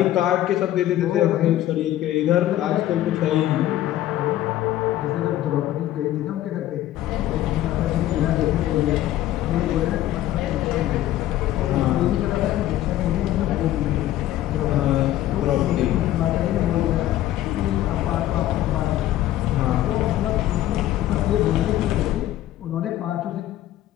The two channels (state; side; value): quieter; right; 13.6 dB